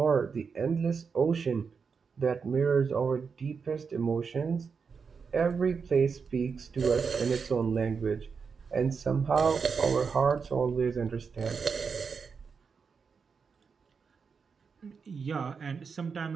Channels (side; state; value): left; quieter; 5.6 dB